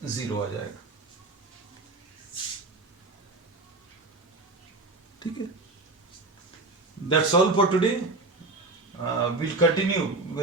zero आ जाएगा। ठीक है, that's all for today. We'll continue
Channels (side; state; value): left; quieter; 3.2 dB